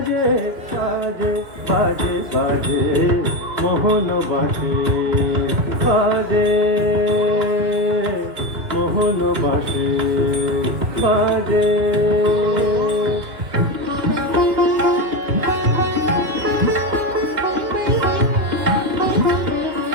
যে বাজে বাজে বাজে, মোহন বাসে বাজে, মোহন বাসে বাজে।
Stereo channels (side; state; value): left; late; 2.5 ms